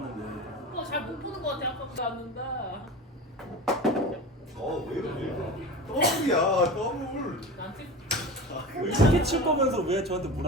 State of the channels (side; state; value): both; normal; correlation 0.30